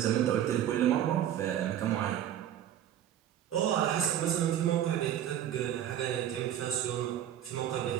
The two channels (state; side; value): quieter; left; 10.9 dB